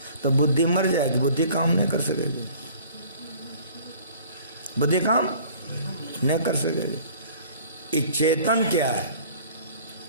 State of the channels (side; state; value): both; inverted; correlation -0.51